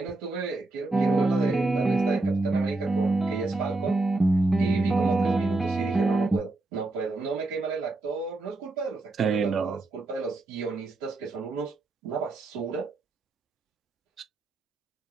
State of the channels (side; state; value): left; quieter; 3.0 dB